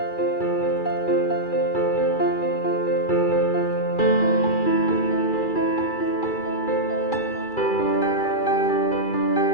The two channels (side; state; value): right; late; 2.3 ms